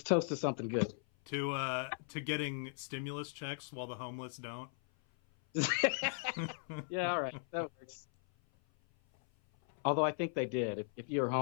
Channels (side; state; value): right; silent; 53 dB below the other